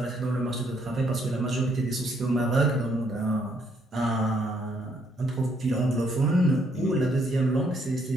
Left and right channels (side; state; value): both; normal; correlation 0.70